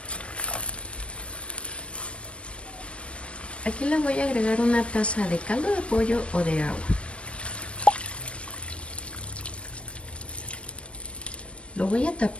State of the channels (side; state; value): right; late; 0.060 ms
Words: Aquí le voy a agregar una taza de caldo de pollo o de agua. Lo voy a